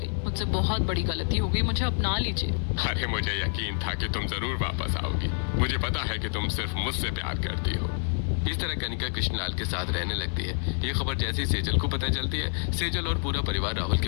मुझसे बहुत बड़ी गलती हो गई, मुझे अपना लीजिए। अरे मुझे यकीन था कि तुम जरूर वापस आओगी। मुझे पता है कि तुम सिर्फ मुझसे प्यार करती हो। इस तरह कनिका कृष्णलाल के साथ रहने लगती है। ये खबर जैसे ही सेजल को पता चलती है, सेजल और पूरा परिवार राहुल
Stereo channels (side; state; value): right; silent; digital silence